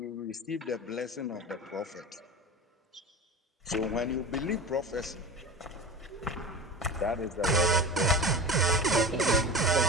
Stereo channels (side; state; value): both; normal; correlation 0.31